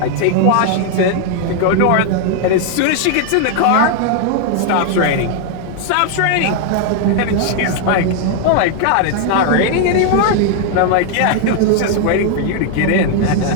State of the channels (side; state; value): both; different; correlation 0.00